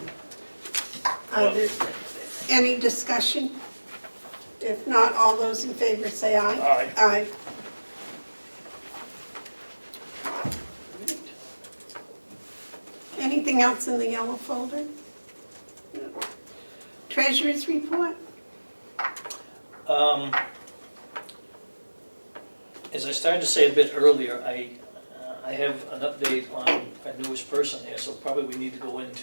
There any discussion? If not, all those in favor say aye. Aye. Aye. Anything else in the yellow folder? No. Treasurer's report? As I started to say a bit earlier, I have an update on our newest person here, so probably we need to go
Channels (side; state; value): both; inverted; correlation -1.00